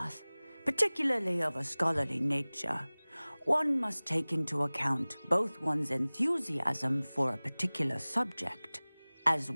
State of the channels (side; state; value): both; inverted; correlation -1.00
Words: particularly of a scholarly nature, one must take into account both one's enthusiasm for a particular subject, as